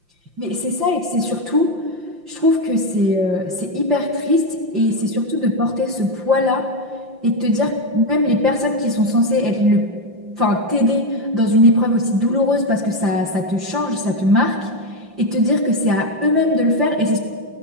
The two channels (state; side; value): late; left; 5.7 ms